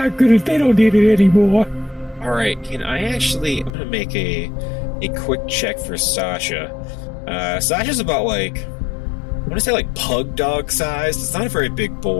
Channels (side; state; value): right; drops out; at 3.7 s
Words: good. They don't need it anymore. All right, I'm going to make a quick check for Sasha. Sasha's about I want to say pug dog sized. It's not a very big